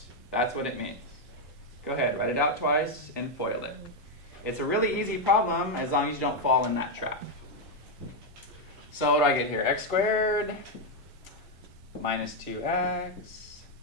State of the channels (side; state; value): both; normal; correlation 0.02